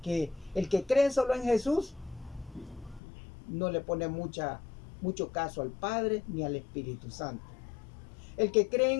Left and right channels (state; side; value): drops out; right; at 3.0 s